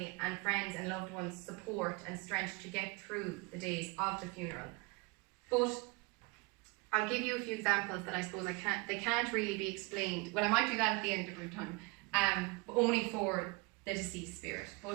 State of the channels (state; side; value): quieter; left; 26.8 dB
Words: and friends and loved ones support and strength to get through the days of the funeral. But I'll give you a few examples that I suppose they can't really be explained. Well, I might do that at the end of our time, but only for the deceased spirit.